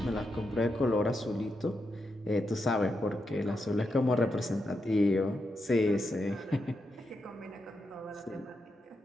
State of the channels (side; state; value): both; normal; correlation 0.85